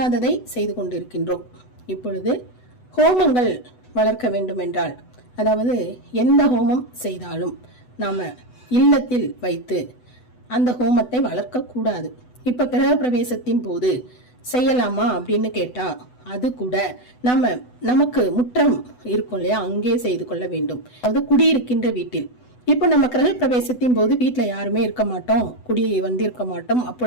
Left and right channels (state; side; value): late; right; 8.0 ms